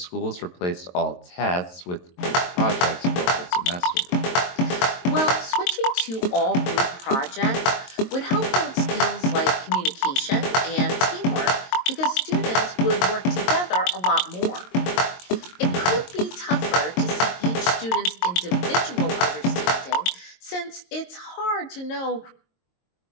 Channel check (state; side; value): late; right; 22 ms